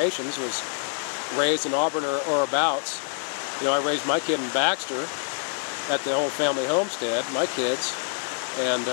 was raised in Auburn or abouts. You know, I raised my kid in Baxter at the old family homestead, my kids, and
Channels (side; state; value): right; silent; 61 dB below the other